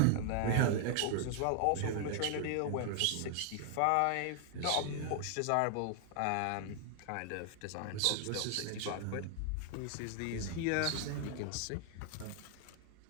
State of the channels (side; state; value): both; different; correlation 0.00